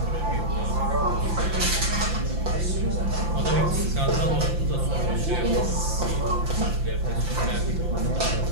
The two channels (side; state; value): left; late; 5.8 ms